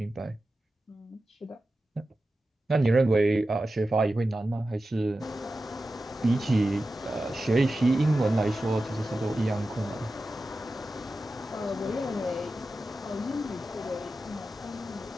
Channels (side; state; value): both; normal; correlation 0.93